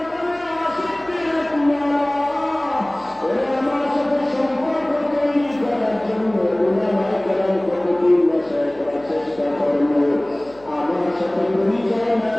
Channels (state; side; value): noise; left; hum, 27 dB below the sound